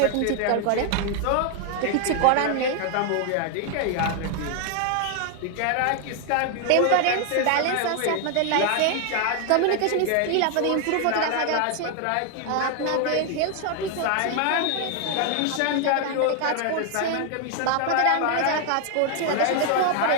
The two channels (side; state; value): both; different; correlation 0.00